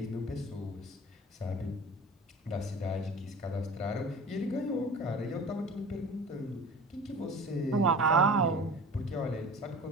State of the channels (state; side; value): normal; both; correlation 0.39